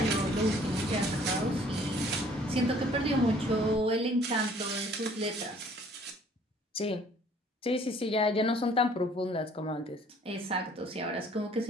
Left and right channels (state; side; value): normal; both; correlation 0.57